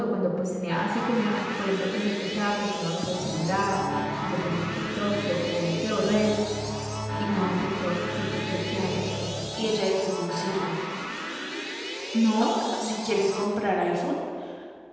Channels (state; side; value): identical; both; correlation 1.00